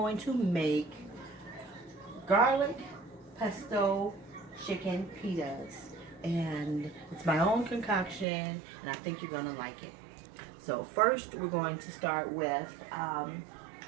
to make garlic pesto chicken pitas. And it's my own concoction, and I think you're gonna like it. So first we're going to start with, I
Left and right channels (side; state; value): left; drops out; at 8.2 s